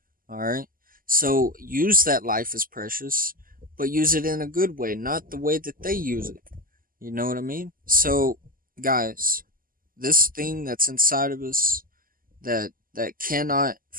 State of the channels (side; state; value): left; late; 0.41 ms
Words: All right, so use that life is precious, but use it in a good way, not the way that they use it. You know what I mean? So, guys, this thing that's inside of us that cannot